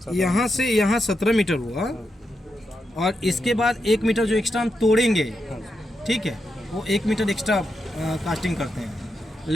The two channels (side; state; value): both; normal; correlation 0.85